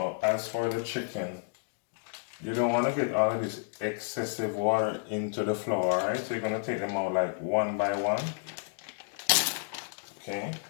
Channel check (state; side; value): silent; right; digital silence